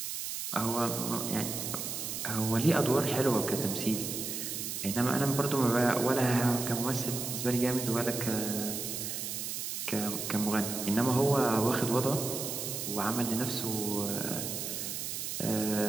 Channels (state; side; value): noise; right; hiss, 4 dB below the sound